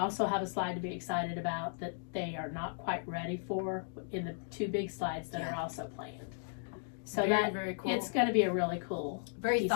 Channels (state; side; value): silent; right; digital silence